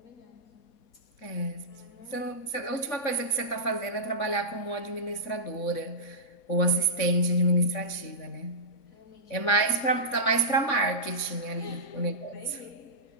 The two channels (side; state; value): right; late; 4.2 ms